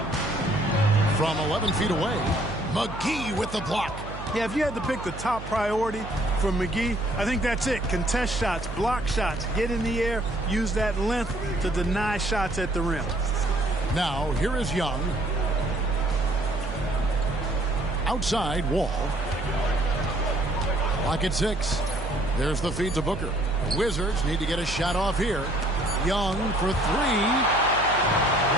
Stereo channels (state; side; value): noise; right; hum, 11 dB below the sound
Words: From 11 feet away, McGee with the block. Yeah, if you had to pick the top priority for McGee, I think that's it. Contest shots, block shots, get in the air, use that length to deny shots at the rim. Now, here is Young. Outside, Wall. Clock at 6. There's the feed to Booker. Wizards need to get a shot off here. Young for 3.